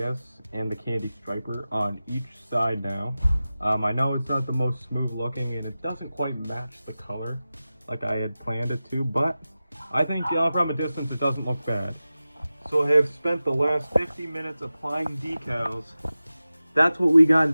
and the candy striper on each side now. I know it's not the most smooth looking, and it doesn't quite match the color like I had planned it to, but I think from a distance it doesn't look bad. So I have spent the last 50 minutes applying decals. That's what we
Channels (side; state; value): both; inverted; correlation -0.95